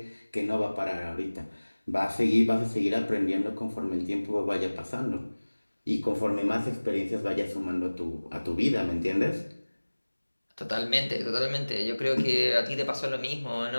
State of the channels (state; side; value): inverted; both; correlation -1.00